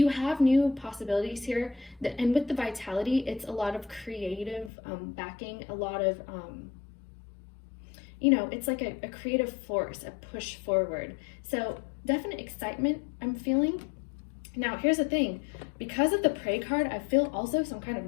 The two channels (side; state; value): right; drops out; at 4.7 s